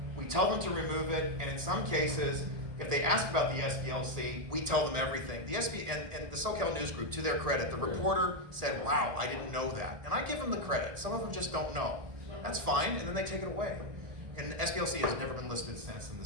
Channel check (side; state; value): left; late; 1.8 ms